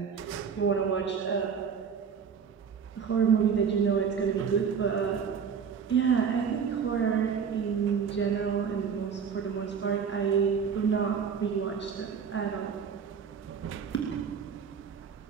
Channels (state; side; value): quieter; left; 6.7 dB